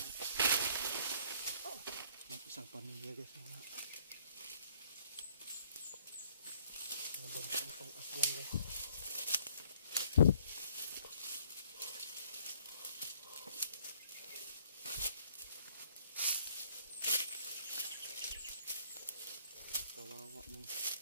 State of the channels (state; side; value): inverted; both; correlation -0.61